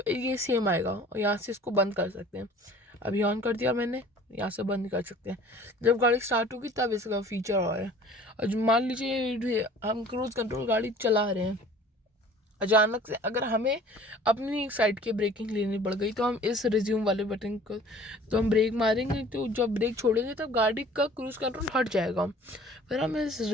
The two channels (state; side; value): normal; both; correlation 0.49